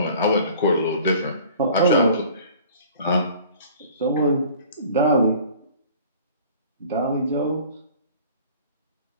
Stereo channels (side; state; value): both; inverted; correlation -0.48